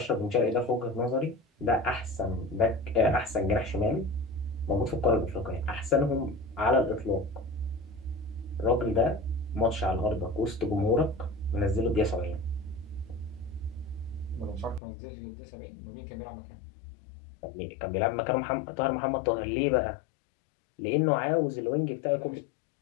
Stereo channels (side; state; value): right; drops out; at 14.8 s